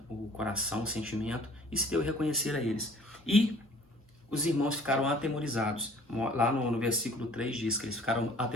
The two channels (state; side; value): normal; both; correlation 0.52